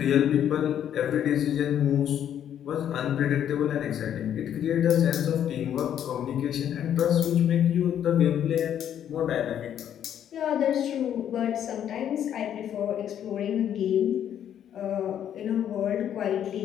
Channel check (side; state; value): right; quieter; 9.9 dB